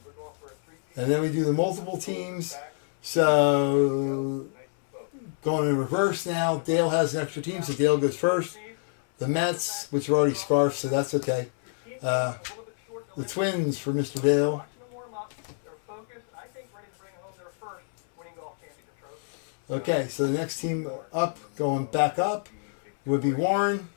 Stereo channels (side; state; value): right; silent; 60 dB below the other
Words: And then we do the multiple teams. So, going in reverse now. Dale has an extra team, so Dale goes first. The Mets, which are already scarfed, so that's okay. The Twins for Mr. Dale. Okay, so the next team up, going back up, would be Warren.